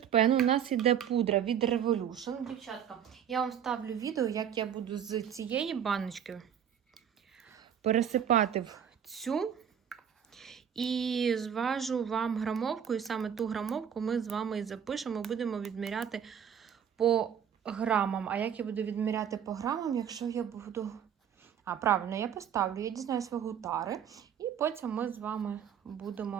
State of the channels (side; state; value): left; quieter; 8.6 dB